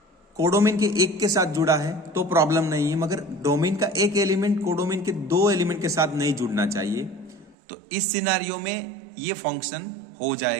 कोडोमेन के एक के साथ जुड़ा है तो प्रॉब्लम नहीं है, मगर डोमेन का एक एलिमेंट कोडोमेन के 2 एलिमेंट के साथ नहीं जुड़ना चाहिए। तो इस सिनारियो में ये फंक्शन हो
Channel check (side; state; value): left; drops out; at 7.6 s